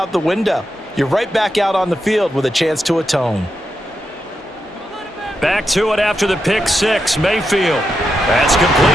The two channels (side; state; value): both; normal; correlation 0.86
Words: the window. You're right back out on the field with a chance to atone. Back to it after the pick six. Mayfield. That's